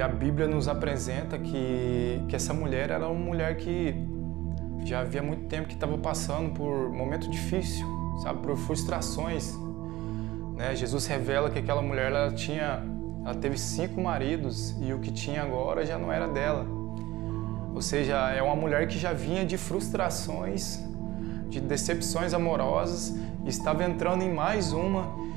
a Bíblia nos apresenta que essa mulher era uma mulher que já havia muito tempo que estava passando por um momento difícil, sabe, por frustrações. Jesus revela que aquela mulher ela teve 5 maridos e o que tinha agora já não era dela. Ou seja, é uma mulher que já vinha de frustrações, de decepções amorosas, e estava entrando em mais uma.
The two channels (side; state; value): left; quieter; 17.3 dB